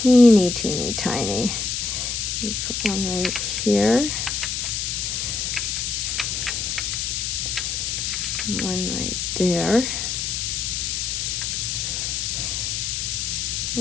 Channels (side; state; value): left; noise; hiss, 1 dB below the sound